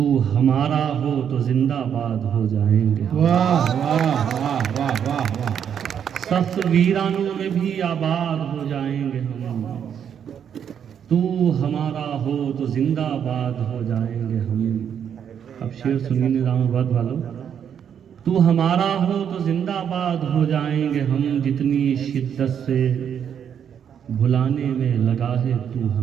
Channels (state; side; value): quieter; left; 8.4 dB